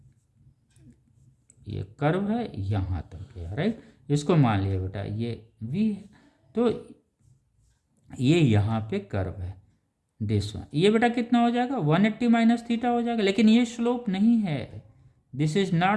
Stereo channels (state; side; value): identical; both; correlation 1.00